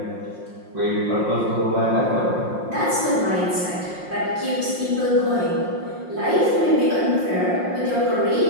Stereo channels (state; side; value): late; left; 5.6 ms